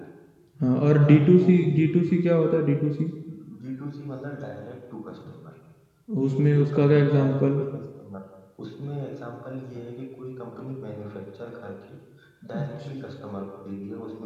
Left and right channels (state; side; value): identical; both; correlation 1.00